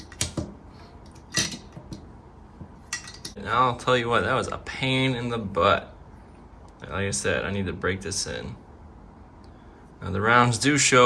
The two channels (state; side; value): identical; both; correlation 1.00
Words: And I'll tell you what, that was a pain in the butt. Like I said, I need to break this in. Now the rounds do